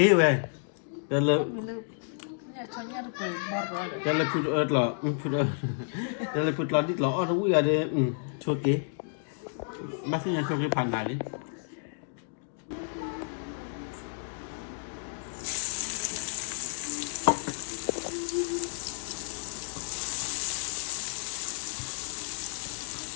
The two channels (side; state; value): right; silent; digital silence